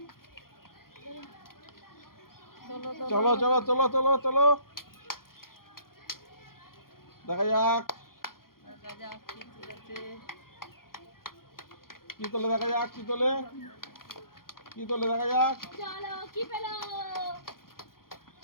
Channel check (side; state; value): right; late; 0.92 ms